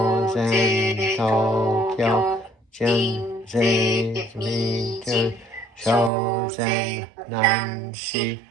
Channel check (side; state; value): left; drops out; at 6.1 s